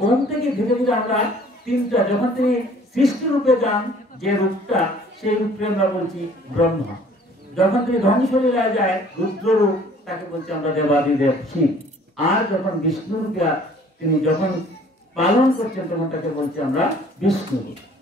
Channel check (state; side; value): normal; both; correlation 0.54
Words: ওম থেকে ধীরে ধীরে আমরা তিনটা, যখন তিনি সৃষ্টি রূপে যান যে রূপটা, সেই রূপকে আমরা বলছি ব্রহ্মা। যখন তিনি ধ্বংসলীলায় যায় রুদ্র রূপ, তাকে বলছি আমরা দেবাদিদেব শিব। আর যখন বিষ্ণু রূপে তিনি যখন পালন করছেন, তখন তাকে বলছি আমরা বিষ্ণু।